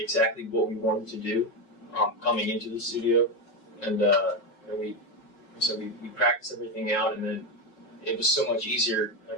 what we wanted to do coming into the studio, and we practiced everything out, and then it was so much easier, like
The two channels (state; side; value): late; right; 5.4 ms